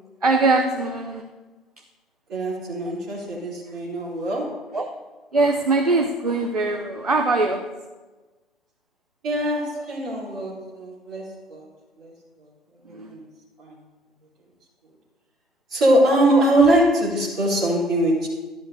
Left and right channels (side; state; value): both; normal; correlation 0.56